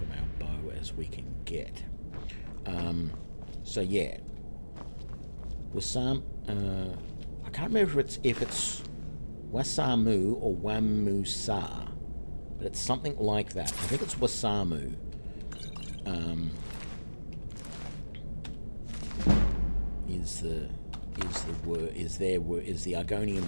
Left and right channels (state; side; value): inverted; both; correlation -1.00